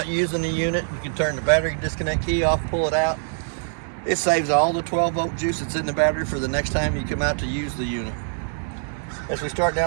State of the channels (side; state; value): left; silent; digital silence